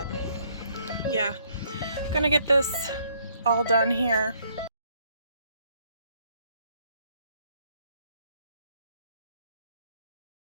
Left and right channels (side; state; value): both; inverted; correlation -0.68